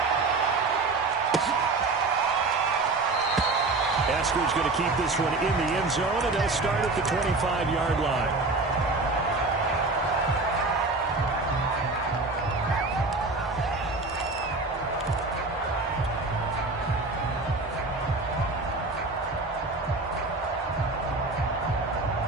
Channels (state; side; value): quieter; left; 3.5 dB